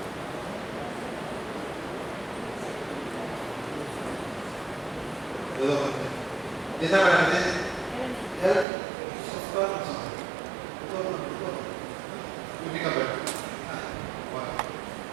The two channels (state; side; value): drops out; left; at 8.7 s